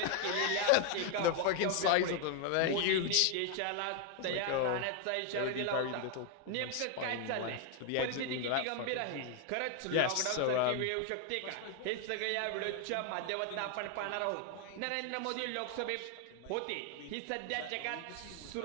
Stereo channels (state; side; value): different; both; correlation 0.01